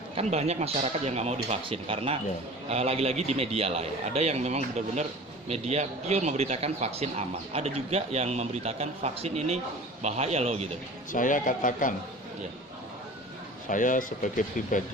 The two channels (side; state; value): both; normal; correlation 0.40